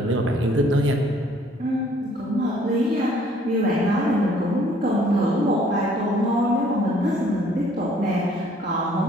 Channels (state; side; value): normal; both; correlation 0.59